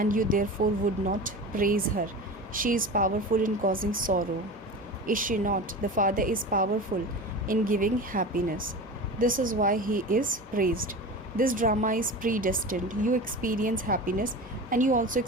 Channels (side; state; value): both; normal; correlation 0.31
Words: you therefore would not praise her. She is powerful in causing sorrow. Is she not? The Father is powerful in giving happiness. This is why he is praised. This drama is predestined. You experience happiness and you also